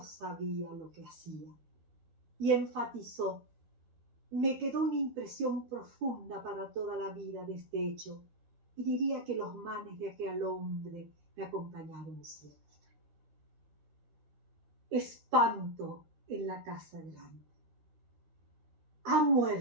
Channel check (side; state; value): left; late; 13 ms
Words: sabía lo que hacía. Y enfatizó: me quedó una impresión profunda para toda la vida de este hecho, y diría que los manes de aquel hombre me acompañaron siempre. Espanto en la casa grande. Ha